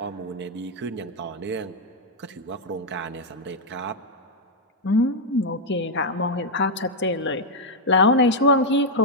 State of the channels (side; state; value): both; normal; correlation -0.01